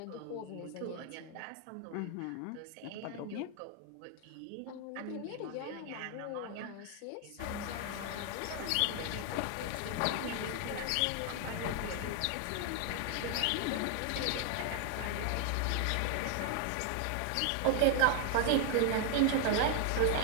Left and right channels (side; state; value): both; different; correlation 0.00